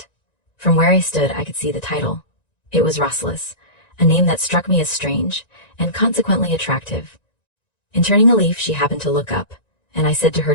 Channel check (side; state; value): right; late; 1.9 ms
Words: From where I stood I could see the title. It was Rasselas, a name that struck me as strange, and consequently attractive. In turning a leaf she happened to look up, and I said to her